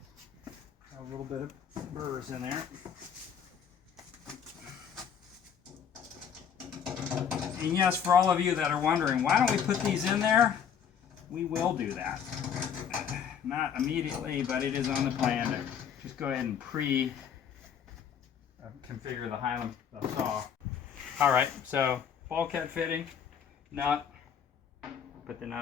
Got a little bit of burrs in there. And yes, for all of you that are wondering, why don't we put these in there? We will do that. Not immediately, but it is on the plan to just go ahead and configure the Highland saw. All right, so bulkhead fitting. Nut, put the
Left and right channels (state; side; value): quieter; right; 7.9 dB